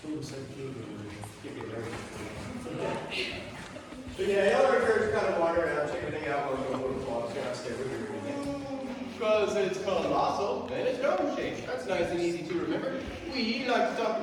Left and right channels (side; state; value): both; identical; correlation 1.00